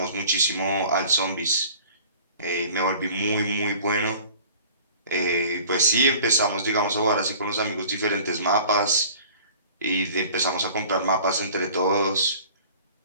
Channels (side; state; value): both; inverted; correlation -0.46